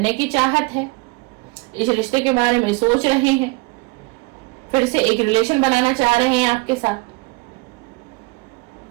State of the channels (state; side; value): quieter; left; 25.7 dB